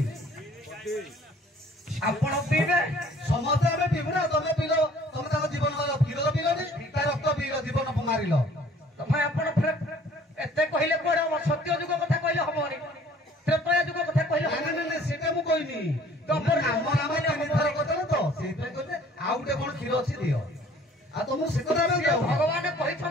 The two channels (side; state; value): both; normal; correlation 0.54